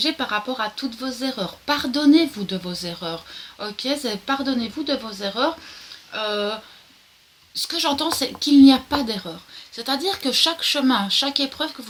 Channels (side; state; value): both; identical; correlation 1.00